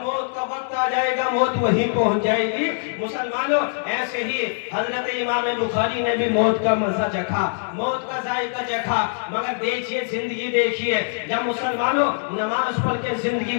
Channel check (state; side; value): silent; right; digital silence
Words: موت کا وقت آ جائے گا موت وہیں پہنچ جائے گی۔ مسلمانوں ایسے ہی حضرت امام بخاری نے بھی موت کا مزہ چکھا، موت کا ذائقہ چکھا، مگر دیکھیے زندگی دیکھیے، جب مسلمانوں نماز پڑھ کے زندگی